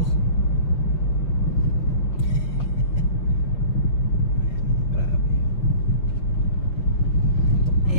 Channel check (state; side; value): late; right; 5.7 ms